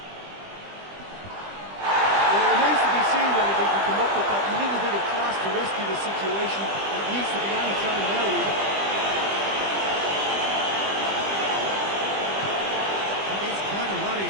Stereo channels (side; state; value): left; late; 20 ms